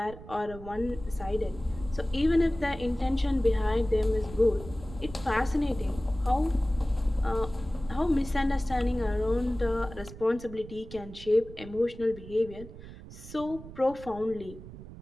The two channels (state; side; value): noise; right; rumble, 15 dB below the sound